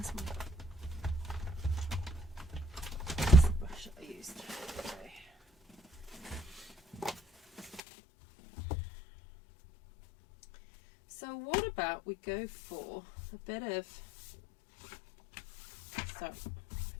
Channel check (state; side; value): drops out; right; at 7.8 s